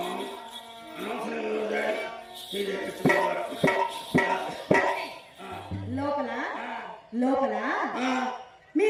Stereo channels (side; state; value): both; identical; correlation 1.00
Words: లోపల లోపల మీ